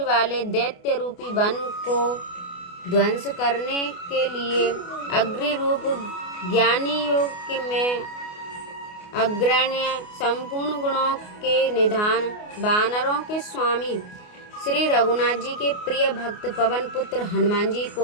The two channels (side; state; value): right; late; 28 ms